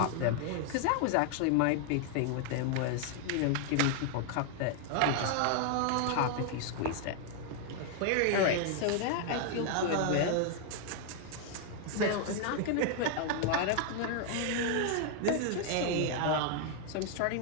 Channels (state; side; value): different; both; correlation 0.00